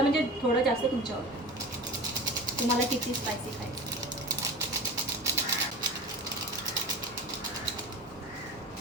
म्हणजे थोडं जास्त तुमच्यावर, तुम्हाला किती स्पायसी खायचं.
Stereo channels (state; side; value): normal; both; correlation 0.32